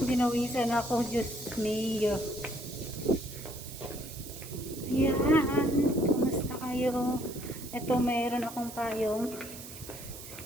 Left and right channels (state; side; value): noise; right; hiss, 13 dB below the sound